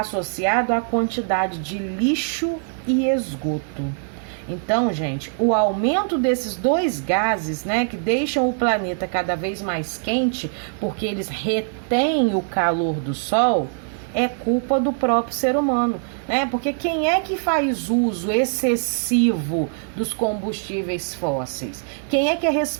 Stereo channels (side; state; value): left; silent; digital silence